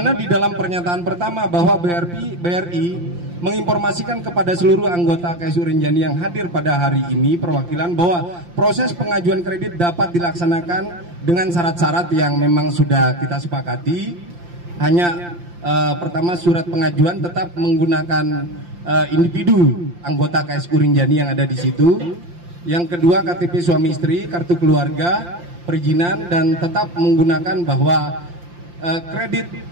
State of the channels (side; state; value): left; late; 5.8 ms